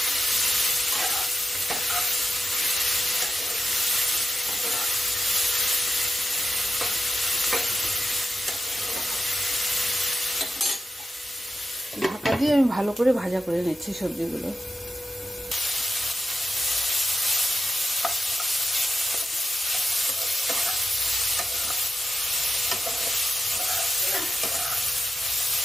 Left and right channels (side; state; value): both; normal; correlation 0.91